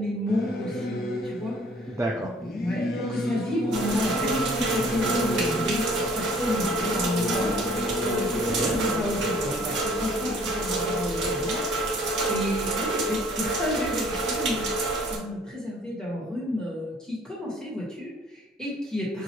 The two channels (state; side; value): normal; both; correlation 0.56